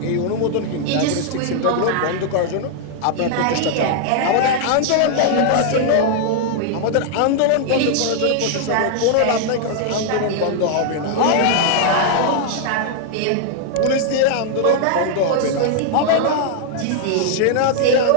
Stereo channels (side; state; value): both; different; correlation 0.00